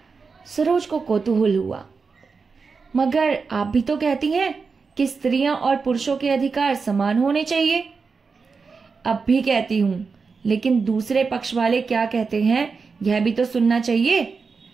सरोज को कौतूहल हुआ, मगर आप भी तो कहती हैं कि स्त्रियां और पुरुषों के अधिकार समान होने चाहिए। अब भी कहती हूं, लेकिन दूसरे पक्ष वाले क्या कहते हैं यह भी तो सुनना चाहिए।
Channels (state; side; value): quieter; left; 4.9 dB